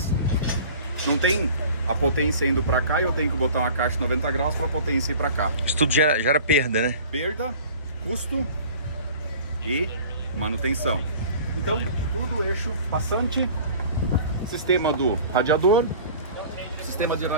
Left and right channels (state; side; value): inverted; both; correlation -0.44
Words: Não tem a potência indo para cá e eu tenho que botar uma caixa de 90 graus para a potência ir para cá. Isso tudo gera perda, né? Perda, custo e manutenção. Então, tudo eixo passante, sistema do radiador, sistema de